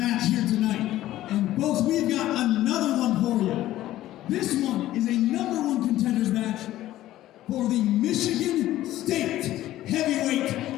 here tonight. And folks, we've got another one for you. This one is a #1 contenders match for the Michigan State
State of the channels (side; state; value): right; quieter; 14.4 dB